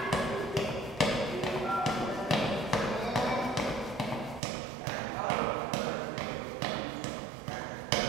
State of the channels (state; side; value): drops out; left; at 4.4 s